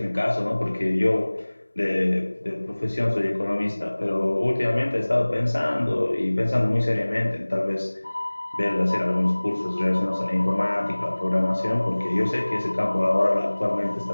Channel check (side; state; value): both; inverted; correlation -1.00